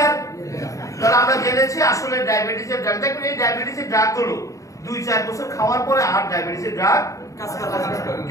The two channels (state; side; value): late; right; 0.16 ms